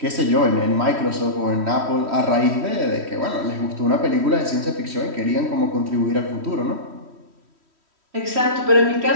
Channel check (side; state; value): left; late; 3.1 ms